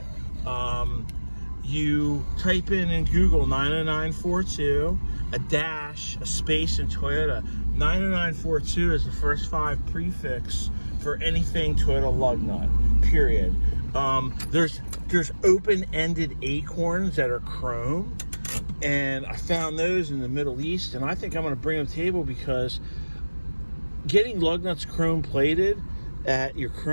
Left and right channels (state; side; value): inverted; both; correlation -1.00